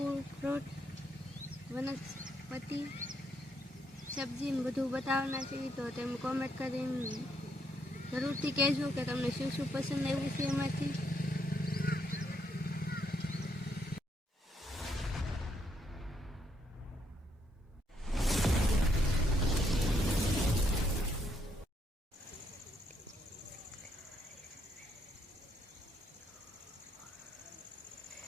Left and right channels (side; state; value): both; normal; correlation 0.75